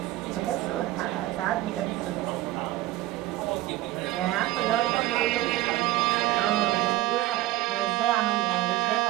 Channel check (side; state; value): left; quieter; 16.2 dB